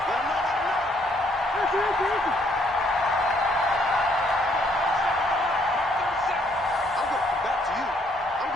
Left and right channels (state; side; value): normal; both; correlation 0.68